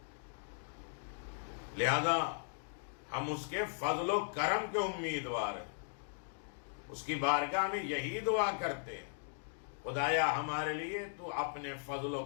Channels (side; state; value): right; silent; digital silence